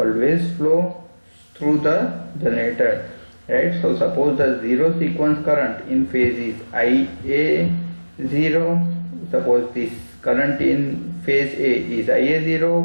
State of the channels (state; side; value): inverted; both; correlation -1.00